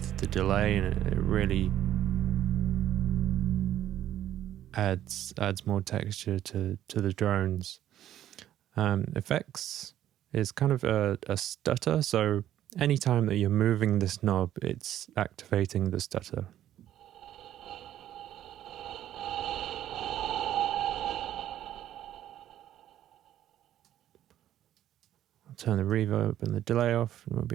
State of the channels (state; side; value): quieter; left; 11.9 dB